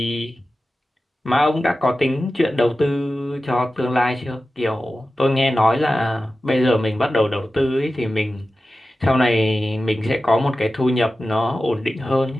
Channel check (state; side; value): normal; both; correlation 0.94